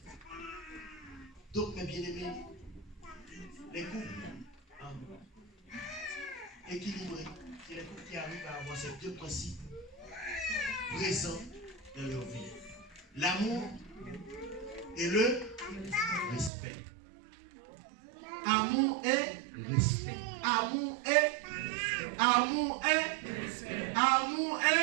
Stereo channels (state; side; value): drops out; left; at 16.5 s